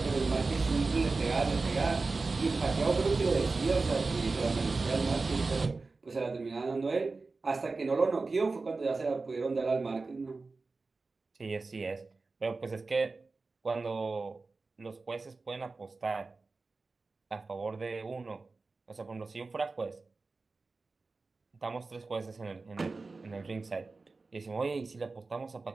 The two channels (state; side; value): quieter; left; 3.8 dB